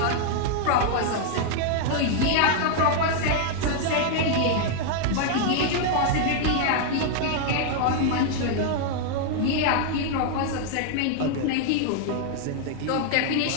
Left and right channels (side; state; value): both; different; correlation 0.00